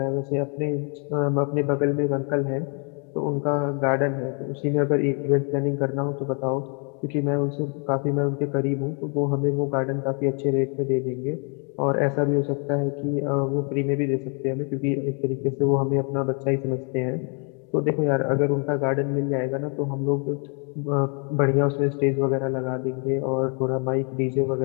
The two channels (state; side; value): quieter; right; 37.3 dB